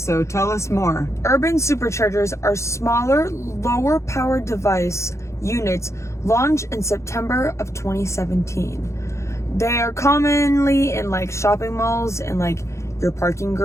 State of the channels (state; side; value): late; right; 0.14 ms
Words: tell us more. Urban Superchargers are smaller, lower powered device units launched in September of 2017. They are commonly in like shopping malls and like your parking